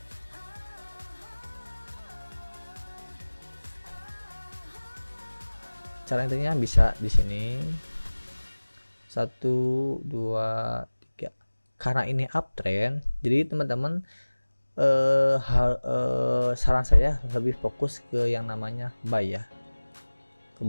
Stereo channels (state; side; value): inverted; both; correlation -1.00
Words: Cara intinya bisa di sini 1 2 3. Karena ini uptrend, jadi teman-teman saran saya lebih fokus ke yang namanya buy ya, ke